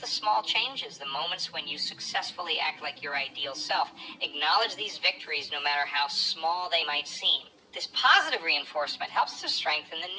small changes, the moments when you successfully act like your ideal self. Acknowledge these victories no matter how small they might seem. This positive reinforcement helps to strengthen the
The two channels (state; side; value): identical; both; correlation 1.00